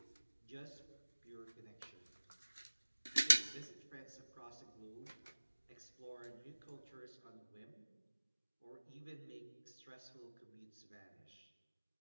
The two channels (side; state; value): both; inverted; correlation -1.00